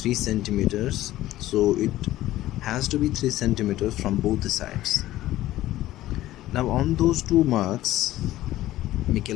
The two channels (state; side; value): quieter; right; 15.1 dB